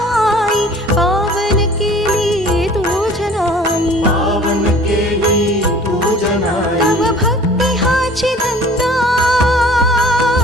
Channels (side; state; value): both; normal; correlation 0.48